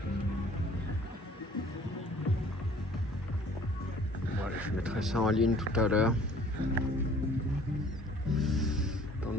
Voilà, je mettrai ça en ligne tout à l'heure. Temps de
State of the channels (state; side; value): normal; both; correlation 0.53